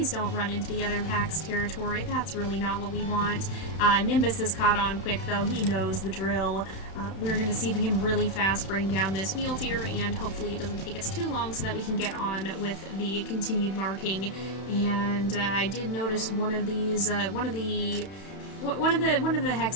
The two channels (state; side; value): late; right; 31 ms